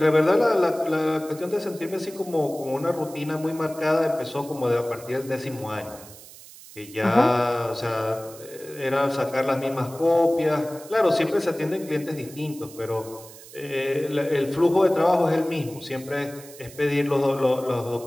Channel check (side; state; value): right; noise; hiss, 18 dB below the sound